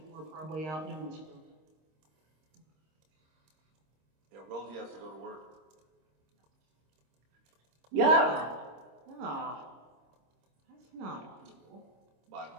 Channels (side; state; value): left; late; 26 ms